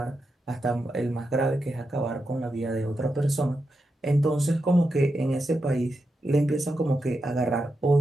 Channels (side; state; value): both; normal; correlation 0.87